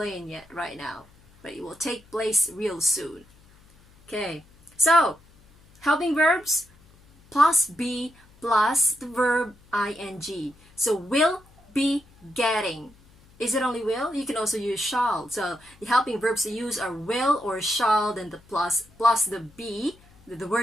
yet right now. But it will take place real soon. Okay, so helping verbs plus be plus the verb ing. So will be getting. Is it only will? You can also use shall. So the helping verbs to use are will or shall, then the plus the be, the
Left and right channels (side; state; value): left; noise; hum, 28 dB below the sound